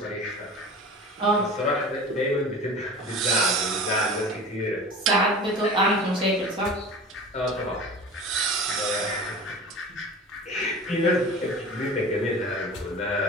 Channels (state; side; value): normal; both; correlation 0.36